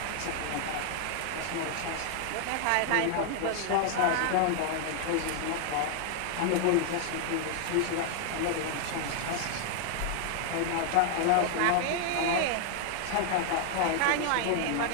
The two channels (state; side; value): different; both; correlation 0.00